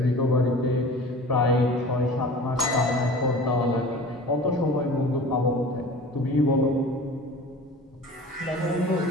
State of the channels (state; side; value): normal; both; correlation 0.40